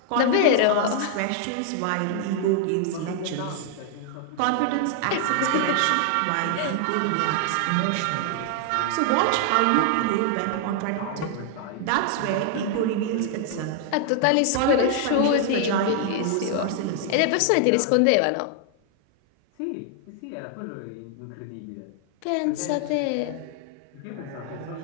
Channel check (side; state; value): both; different; correlation 0.00